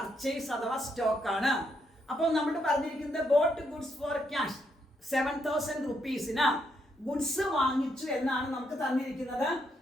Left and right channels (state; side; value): normal; both; correlation 0.77